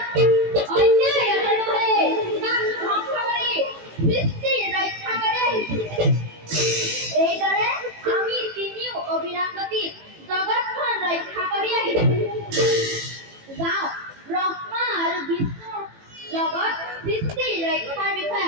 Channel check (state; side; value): late; left; 18 ms